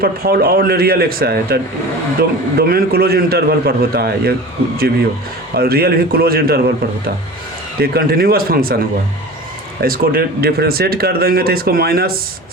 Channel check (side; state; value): both; normal; correlation 0.36